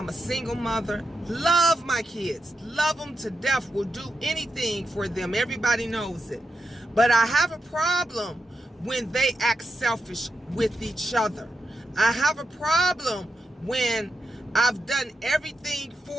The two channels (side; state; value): both; normal; correlation 0.86